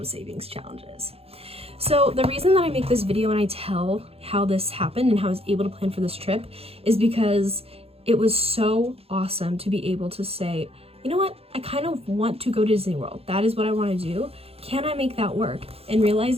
savings challenges. So the reason that I make this video and I tell how this happened and how I was able to plan for this trip is because it was so awesome to be able to say, you know what, I kind of want to go to Disney World. That is what I want to do. Can I make that work? And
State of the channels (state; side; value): late; left; 0.29 ms